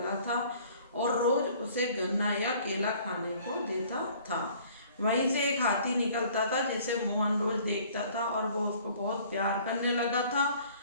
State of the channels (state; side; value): inverted; both; correlation -0.54